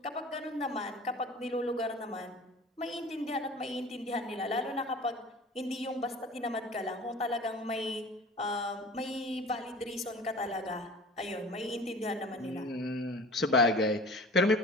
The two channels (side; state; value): both; normal; correlation 0.41